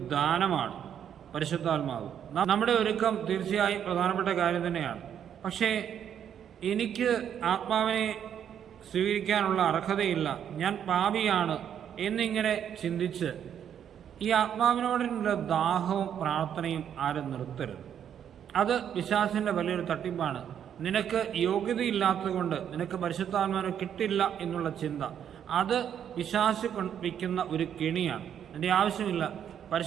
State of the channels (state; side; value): quieter; left; 9.1 dB